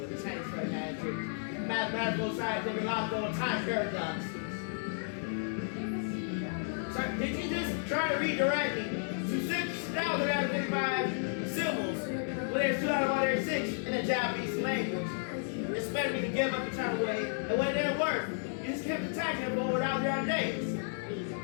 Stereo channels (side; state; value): right; silent; digital silence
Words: the tanks for magic. Mathematical scientific logical time paradoxes. So did you just try to redirect me to 6,000 out of 55 symbols when there's 2 out of 106 in the Japanese language? Expect me to give up the time away, and when it didn't work, you just kept attacking them for over 1,000 days.